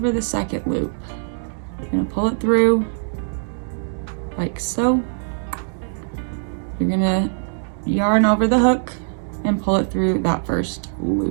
the second loop. You're gonna pull it through like so. You're gonna yarn over the hook and pull it through that first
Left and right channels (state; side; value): silent; left; digital silence